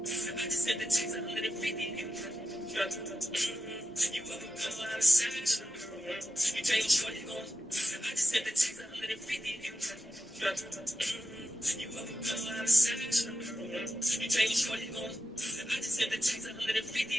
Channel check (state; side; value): normal; both; correlation 0.91